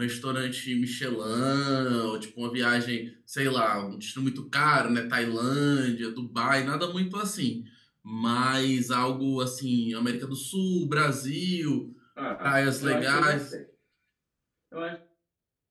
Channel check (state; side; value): identical; both; correlation 1.00